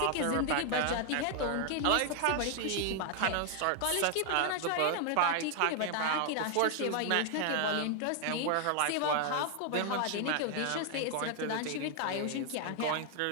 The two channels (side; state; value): both; different; correlation 0.00